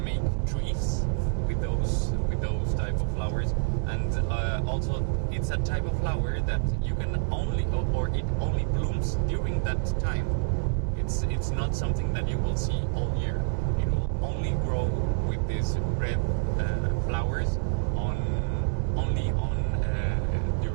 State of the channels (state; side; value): silent; left; digital silence